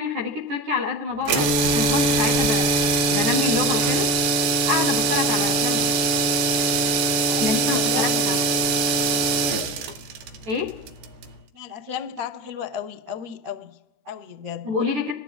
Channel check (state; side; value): late; left; 14 ms